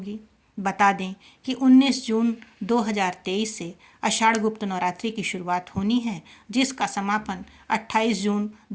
बता दें कि 19 जून 2023 से आषाढ़ गुप्त नवरात्रि की शुरुआत होनी है, जिसका समापन 28 जून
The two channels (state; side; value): identical; both; correlation 1.00